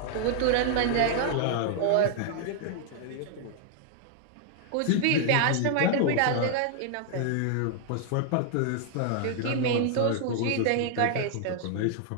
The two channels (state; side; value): different; both; correlation 0.00